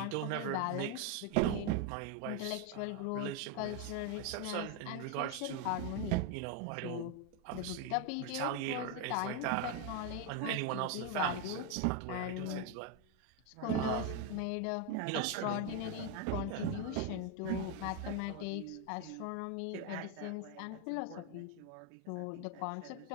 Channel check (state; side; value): different; both; correlation 0.01